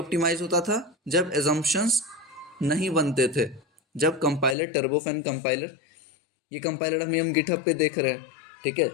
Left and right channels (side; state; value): right; drops out; at 4.5 s